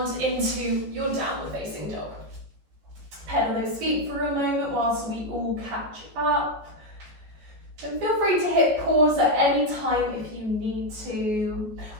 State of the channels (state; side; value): late; left; 14 ms